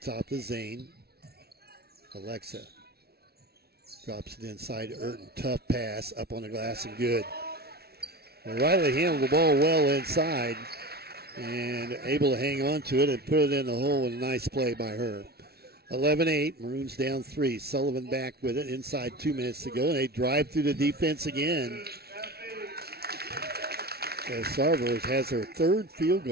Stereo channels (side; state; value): left; late; 0.46 ms